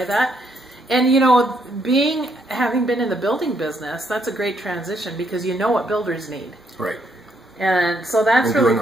that. And you know, having been in the building business, that's a great transition because you know what builders need. Right. And so that's really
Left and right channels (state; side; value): normal; both; correlation 0.73